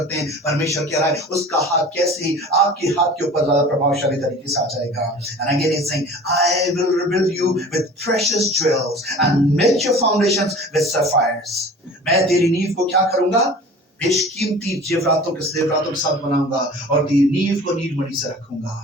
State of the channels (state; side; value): normal; both; correlation 0.41